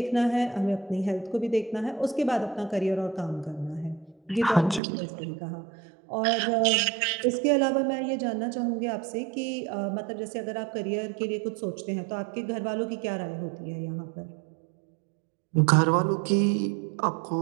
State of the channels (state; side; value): drops out; left; at 4.8 s